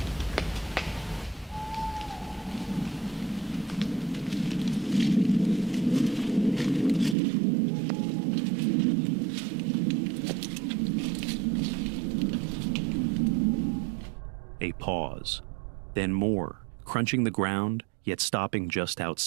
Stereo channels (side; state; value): left; drops out; at 7.2 s